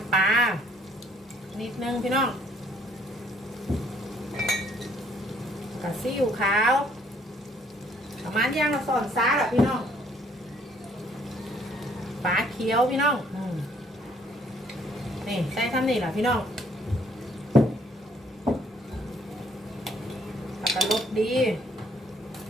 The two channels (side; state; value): both; normal; correlation 0.63